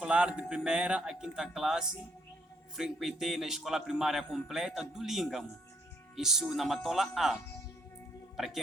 de primeira a quinta classe frequentei na escola primária completa do Língamo, isso na Matola A, para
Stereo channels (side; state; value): both; normal; correlation 0.71